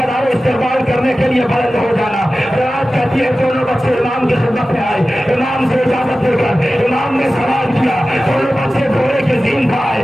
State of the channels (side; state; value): both; normal; correlation 0.95